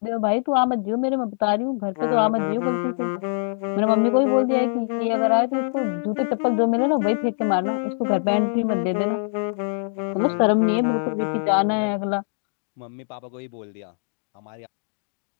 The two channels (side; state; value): right; silent; digital silence